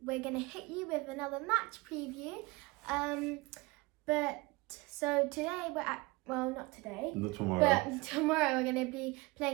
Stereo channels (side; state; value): left; quieter; 24.1 dB